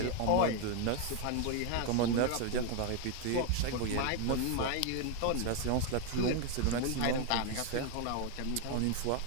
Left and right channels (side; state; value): both; different; correlation 0.01